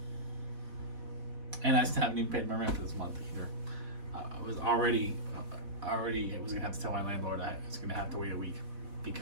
And I still haven't even paid my rent for this month either. I was gonna have to tell my landlord I was gonna have to wait a week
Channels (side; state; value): left; late; 4.1 ms